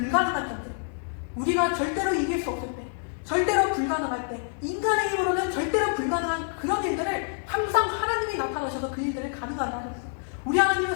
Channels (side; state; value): right; silent; 60 dB below the other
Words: 전쟁, 우리가 절대로 이길 수 없을 때, 절대로 불가능할 때, 인간의 힘으로는 절대로 불가능한 그런 일들을 항상 하나님이 나타나셔서 그 일들을 가능하게 하셨어. 우리